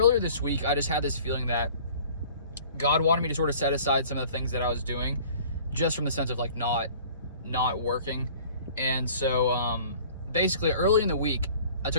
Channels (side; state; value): both; inverted; correlation -0.49